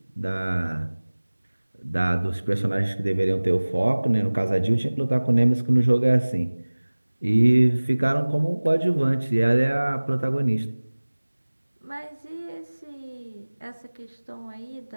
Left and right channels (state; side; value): inverted; both; correlation -1.00